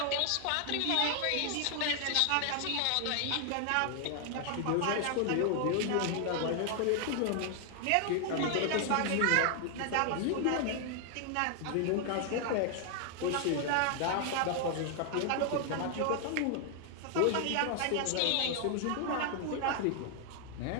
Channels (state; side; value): different; both; correlation 0.00